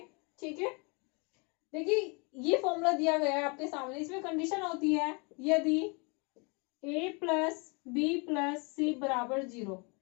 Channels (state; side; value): quieter; right; 31.8 dB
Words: ठीक है। देखिए ये फॉर्मूला दिया गया है आपके सामने, इसमें कंडीशन होती है यदि a प्लस बी प्लस सी बराबर 0।